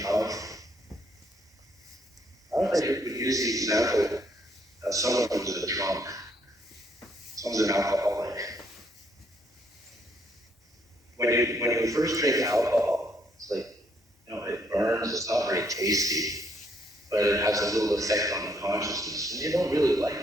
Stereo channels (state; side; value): normal; both; correlation 0.70